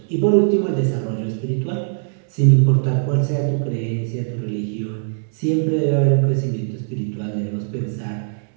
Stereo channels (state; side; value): silent; left; digital silence